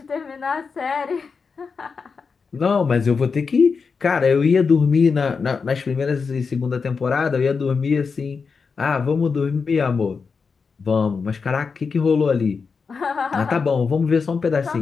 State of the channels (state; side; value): quieter; right; 5.2 dB